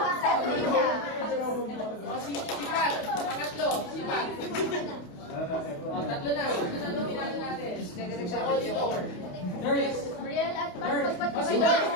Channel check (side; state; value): right; late; 28 ms